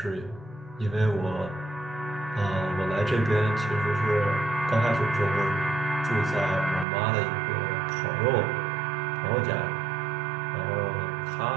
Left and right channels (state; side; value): drops out; left; at 6.9 s